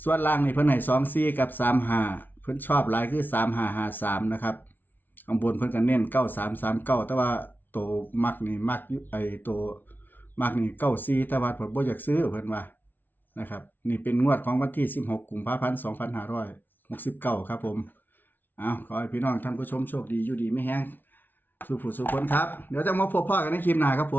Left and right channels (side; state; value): right; late; 0.089 ms